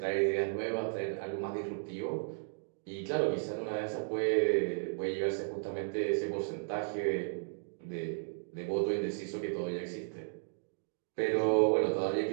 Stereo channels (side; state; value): left; silent; digital silence